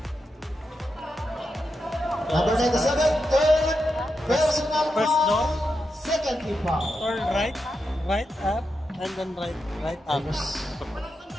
Number 97, third personal First foul, down. second team foul. Turn right up, and then right up. Number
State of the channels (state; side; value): normal; both; correlation 0.87